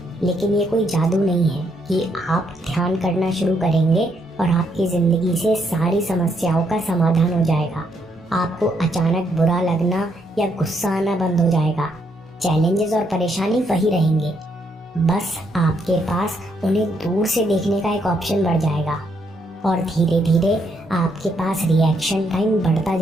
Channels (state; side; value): normal; both; correlation 0.74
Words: लेकिन ये कोई जादू नहीं है कि आप ध्यान करना शुरू करेंगे और आपकी जिंदगी से सारी समस्याओं का समाधान हो जाएगा। आपको अचानक बुरा लगना या गुस्सा आना बंद हो जाएगा। चैलेंजेस और परेशानी वही रहेंगे, बस आपके पास उन्हें दूर से देखने का एक ऑप्शन बढ़ जाएगा और धीरे धीरे आपके पास रिएक्शन टाइम बढ़ता